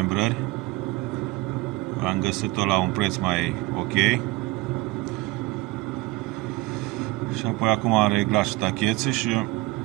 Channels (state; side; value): quieter; left; 20.3 dB